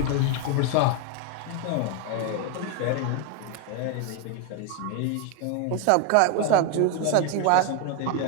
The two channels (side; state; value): both; different; correlation 0.01